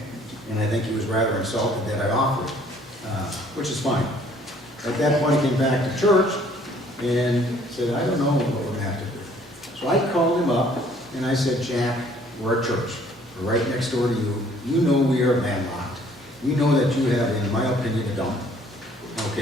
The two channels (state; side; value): normal; both; correlation 0.59